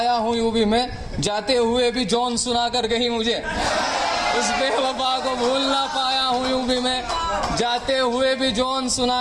हूँ यूं भी मैं, जाते हुए भी जौन सुना कर गई मुझे। उस बेवफा को भूल ना पाया हूँ यूं भी मैं, जाते हुए भी जौन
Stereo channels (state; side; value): identical; both; correlation 1.00